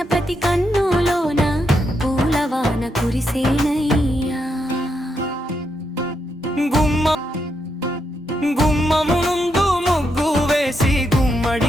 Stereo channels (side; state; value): both; normal; correlation 0.81